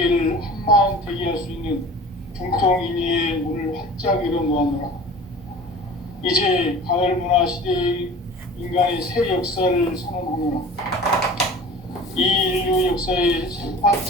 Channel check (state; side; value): normal; both; correlation 0.41